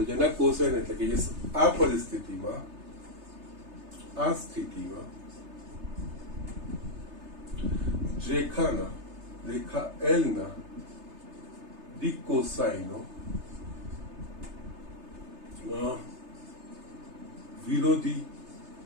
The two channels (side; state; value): left; late; 3.3 ms